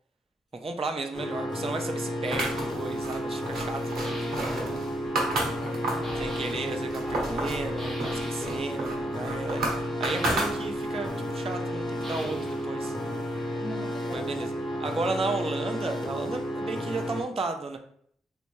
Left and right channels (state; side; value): normal; both; correlation 0.75